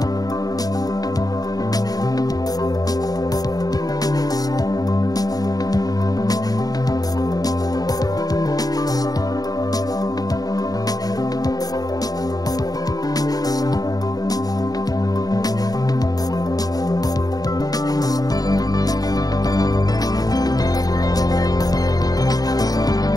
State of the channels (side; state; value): right; late; 0.18 ms